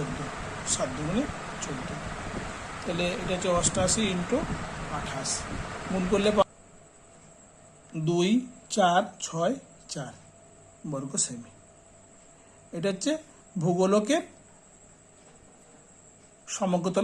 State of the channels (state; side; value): identical; both; correlation 1.00